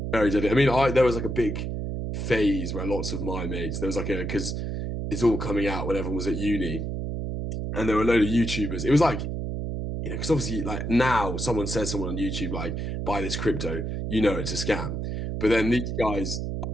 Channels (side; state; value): right; noise; hum, 3 dB below the sound